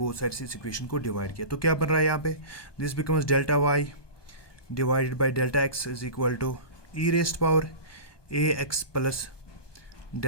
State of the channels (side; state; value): right; late; 1.2 ms